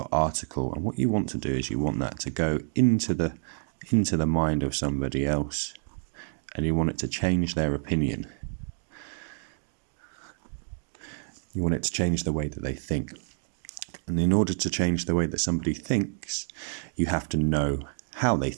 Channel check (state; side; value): silent; left; digital silence